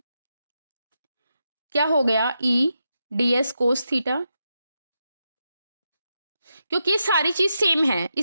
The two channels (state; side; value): inverted; both; correlation -0.86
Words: क्या हो गया, ई डी एस कोस थीटा, क्योंकि ये सारी चीज सेम है,